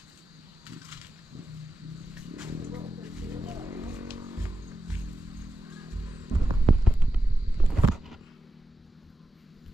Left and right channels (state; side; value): normal; both; correlation 0.90